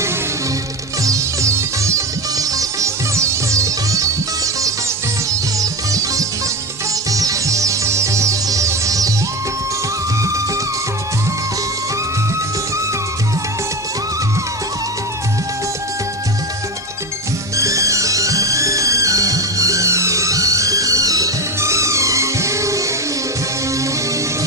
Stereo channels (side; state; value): both; normal; correlation 0.21